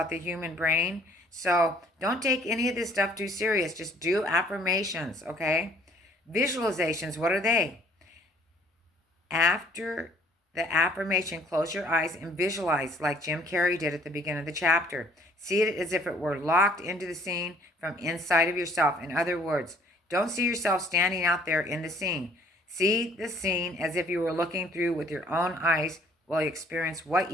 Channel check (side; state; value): both; normal; correlation 0.58